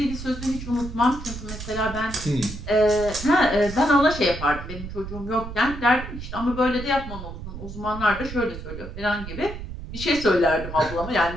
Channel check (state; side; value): noise; right; rumble, 10 dB below the sound